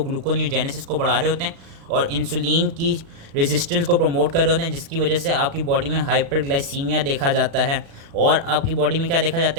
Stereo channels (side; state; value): left; late; 36 ms